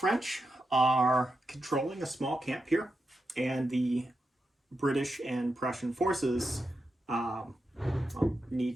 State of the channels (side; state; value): both; normal; correlation 0.88